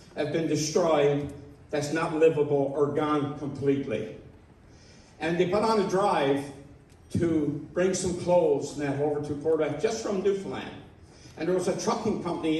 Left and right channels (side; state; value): both; identical; correlation 1.00